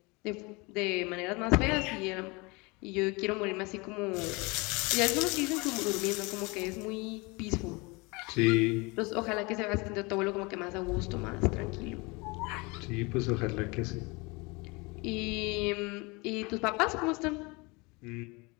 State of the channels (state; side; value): quieter; right; 26.7 dB